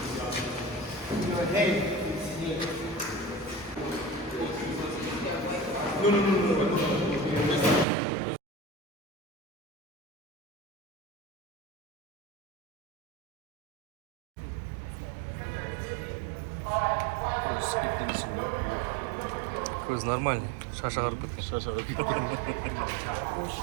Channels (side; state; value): left; drops out; at 7.9 s